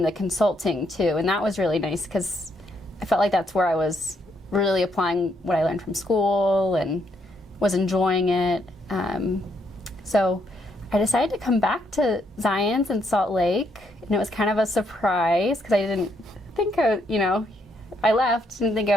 the consulting too, and that was really nice because I felt like that's where I was really applying what I learned from school and was enjoying it. So I decided to come back to Zions in Salt Lake, and it was kind of a surprise because I didn't think I left, didn't think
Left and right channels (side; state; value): both; normal; correlation 0.74